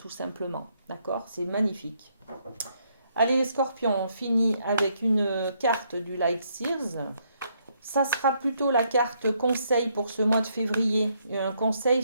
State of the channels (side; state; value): both; inverted; correlation -0.73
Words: simplement. D'accord? C'est magnifique. Allez, les scorpions, on finit avec une carte du Light Sears. Ça sera plutôt la carte conseil pour ce mois de février. Un conseil